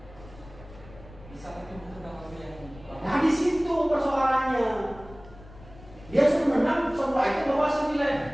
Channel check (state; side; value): noise; left; rumble, 20 dB below the sound